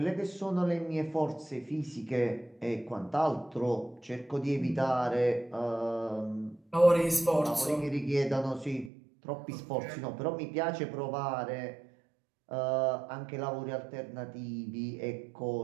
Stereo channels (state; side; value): drops out; left; at 8.9 s